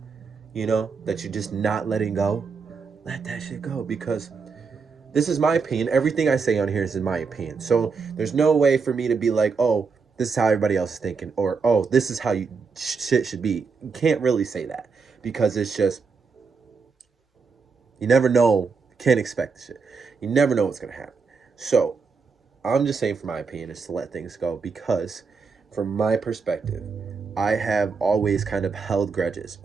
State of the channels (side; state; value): left; quieter; 5.0 dB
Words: that you're just not letting go, let that shit go. Because this is my opinion. Everything I say on here is in my opinion. So there's no way for me to be like, oh, this is how everybody else is thinking, or oh, this is how shit should be. You can't really say that because it's just, you never know. You can't expect the shit. You never know what's gonna happen. So I'm just saying, for my opinion, is to let things go because, from my perspective, I have always kind of held grudges,